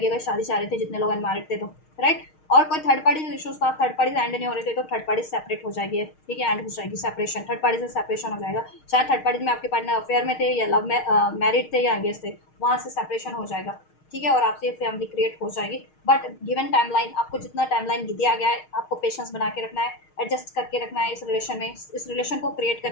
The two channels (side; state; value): right; late; 6.4 ms